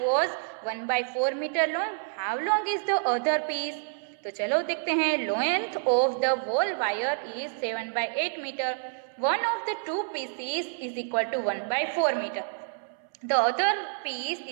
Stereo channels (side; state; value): left; silent; 59 dB below the other